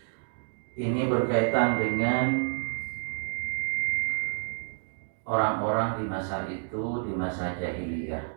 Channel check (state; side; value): silent; left; digital silence